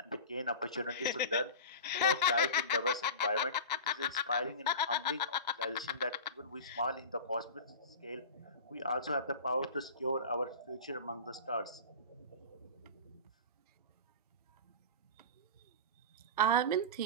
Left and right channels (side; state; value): both; inverted; correlation -0.31